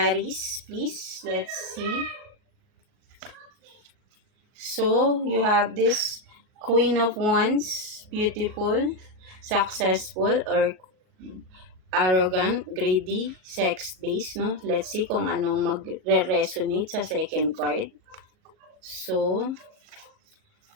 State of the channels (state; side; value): late; left; 38 ms